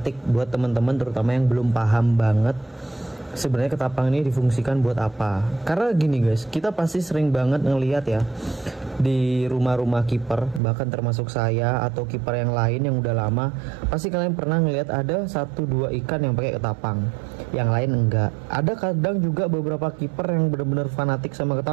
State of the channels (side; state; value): left; drops out; at 10.6 s